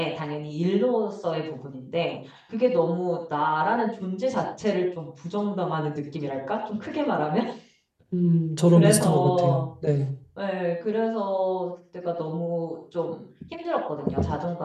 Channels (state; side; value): identical; both; correlation 1.00